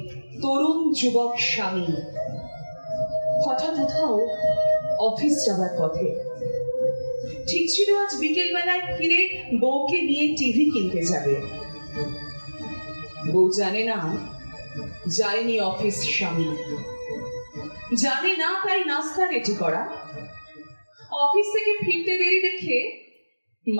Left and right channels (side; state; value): both; inverted; correlation -1.00